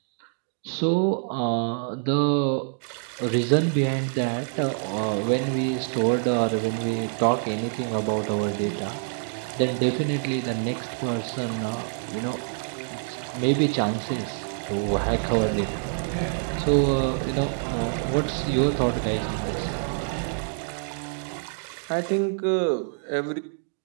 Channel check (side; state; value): left; silent; digital silence